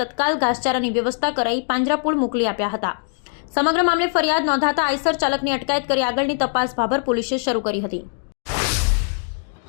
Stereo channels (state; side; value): silent; right; 65 dB below the other